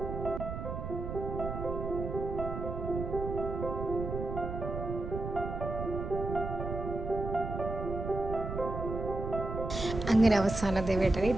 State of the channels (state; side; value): noise; right; rumble, 6 dB below the sound